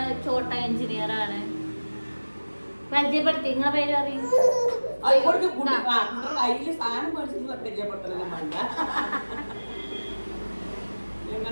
ചോട്ട എഞ്ചിനീയർ ആണ്. പരിചയപ്പെടുത്തി, നിങ്ങളെ പേര് അറിയും.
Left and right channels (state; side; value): inverted; both; correlation -1.00